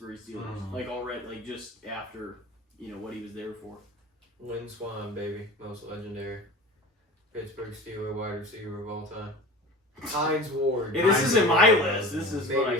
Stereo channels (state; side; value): normal; both; correlation 0.35